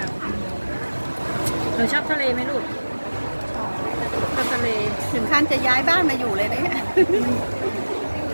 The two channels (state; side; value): inverted; both; correlation -1.00